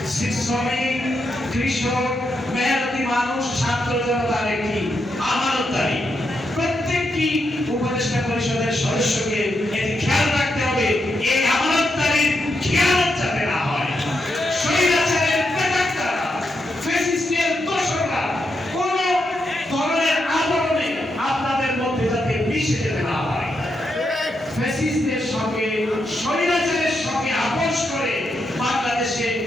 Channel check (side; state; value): both; normal; correlation 0.83